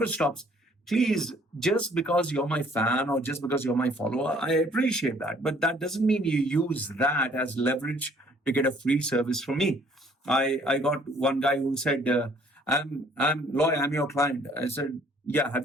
stops. Please, just because you're my fan or just because you're my follower, I appreciate that. But that doesn't mean you use that as leverage to get a free service from me. I got one guy who said, I'm Loy, I'm your client. I said, yeah, have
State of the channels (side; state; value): both; normal; correlation 0.59